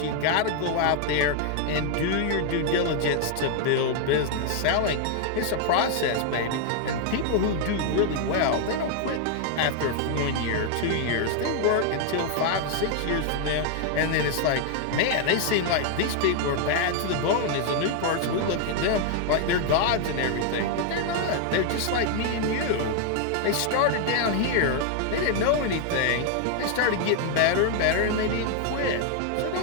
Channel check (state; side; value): different; both; correlation 0.00